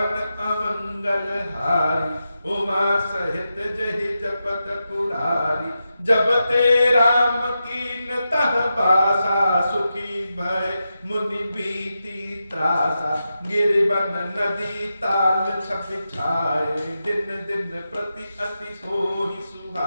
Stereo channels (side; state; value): both; inverted; correlation -0.89